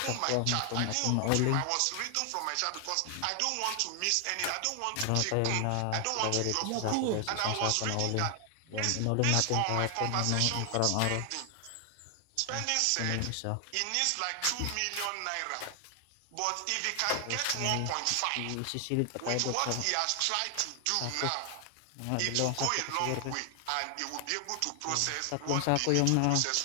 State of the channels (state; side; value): different; both; correlation 0.00